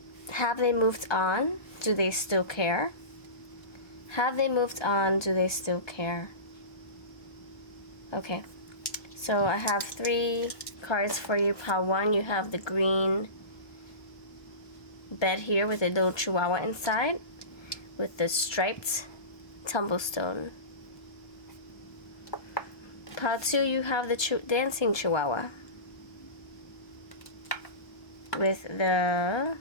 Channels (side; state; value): right; late; 1.2 ms